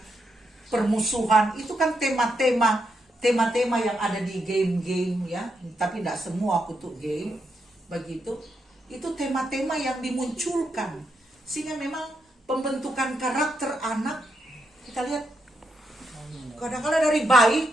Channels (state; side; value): normal; both; correlation 0.81